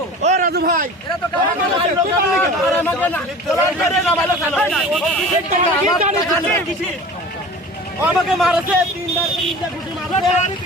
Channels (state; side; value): normal; both; correlation 0.39